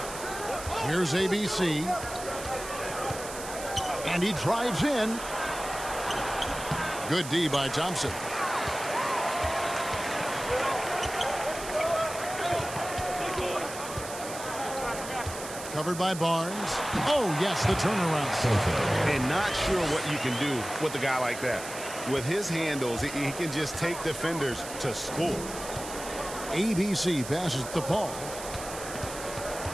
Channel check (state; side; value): noise; right; hiss, 11 dB below the sound